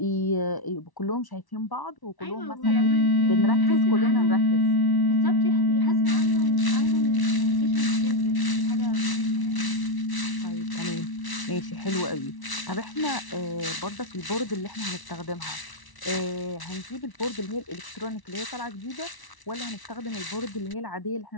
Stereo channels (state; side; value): late; right; 1.1 ms